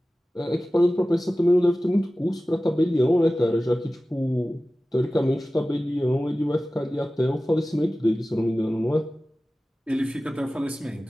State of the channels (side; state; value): both; normal; correlation 0.96